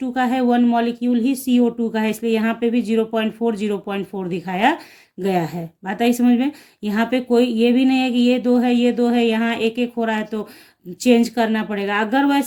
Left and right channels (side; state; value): both; identical; correlation 1.00